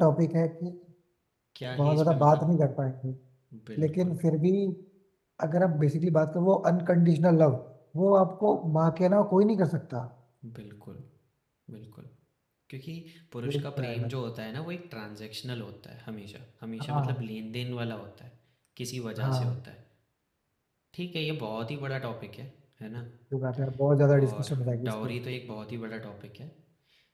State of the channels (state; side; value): identical; both; correlation 1.00